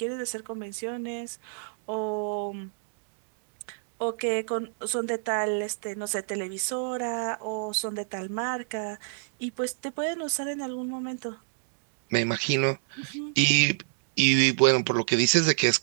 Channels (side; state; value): left; silent; digital silence